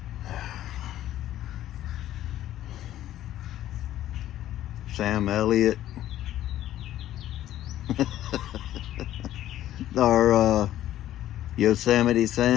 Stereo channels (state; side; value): quieter; right; 13.0 dB